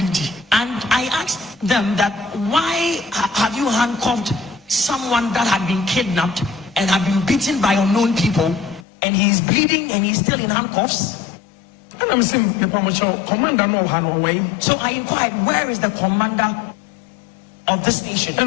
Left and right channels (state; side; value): drops out; right; at 8.8 s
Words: I asked them that, why have you handcuffed someone that had been kidnapped and had been beaten by unknown people, and he is bleeding and he's still in handcuffs? And I'm saying, commander no way. So I inquired, where is the commander of the station?